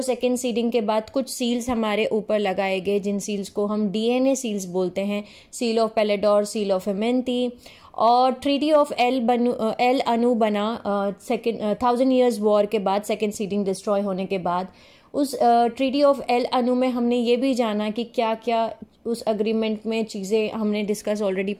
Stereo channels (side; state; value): both; identical; correlation 1.00